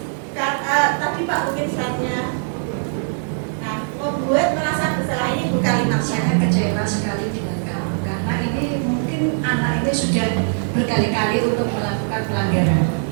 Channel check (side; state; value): left; silent; digital silence